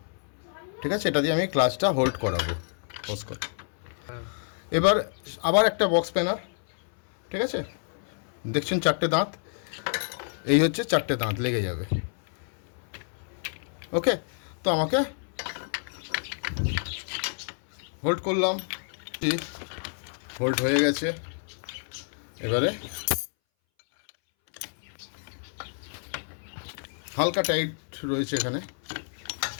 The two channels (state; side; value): silent; right; 59 dB below the other